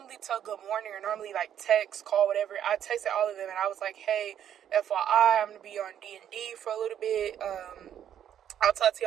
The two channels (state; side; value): quieter; left; 9.9 dB